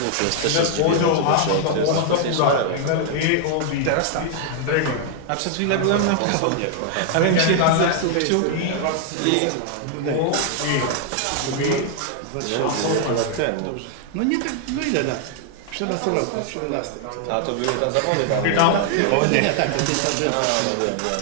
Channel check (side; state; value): both; different; correlation 0.00